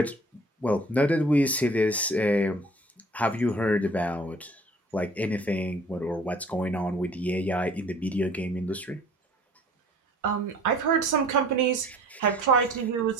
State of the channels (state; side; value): normal; both; correlation 0.50